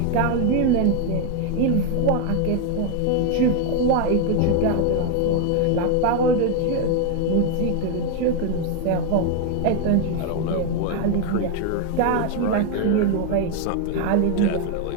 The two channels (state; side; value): different; both; correlation 0.01